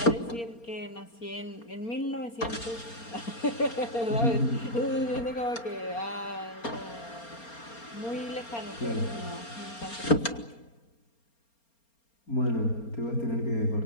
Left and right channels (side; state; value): right; late; 4.3 ms